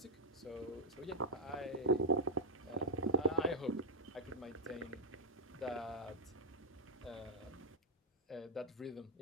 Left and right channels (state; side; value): normal; both; correlation -0.01